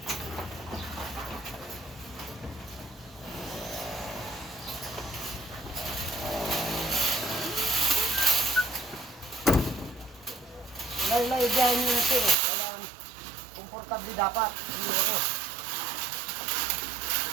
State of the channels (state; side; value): drops out; left; at 12.4 s